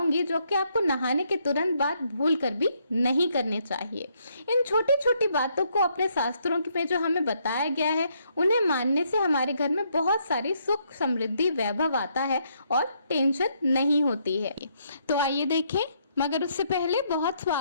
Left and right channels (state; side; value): inverted; both; correlation -0.73